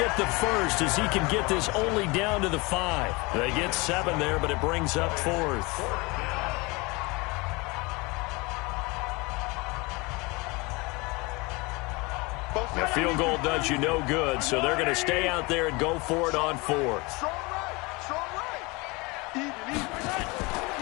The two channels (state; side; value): quieter; right; 25.8 dB